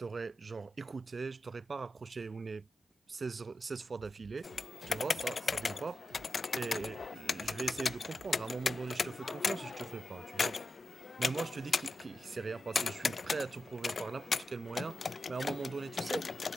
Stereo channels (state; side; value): normal; both; correlation 0.90